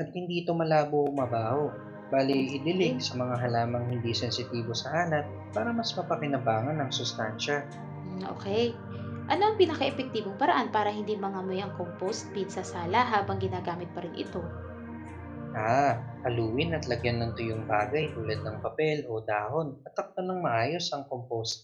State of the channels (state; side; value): identical; both; correlation 1.00